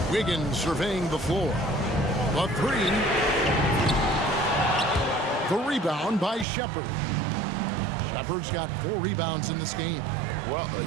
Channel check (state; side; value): drops out; left; at 6.5 s